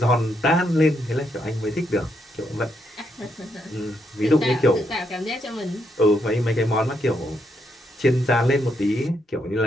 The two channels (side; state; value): both; normal; correlation 0.78